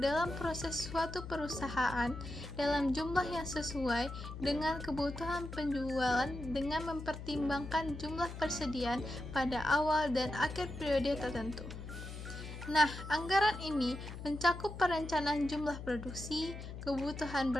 dalam proses suatu perusahaan dalam jumlah yang sesuai dengan kebutuhan penjualan dengan mempertimbangkan jumlah persediaan pada awal dan akhir periode tertentu. Nah, anggaran ini mencakup perencanaan jumlah produksi, kebutuhan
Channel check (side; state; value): left; noise; hum, 9 dB below the sound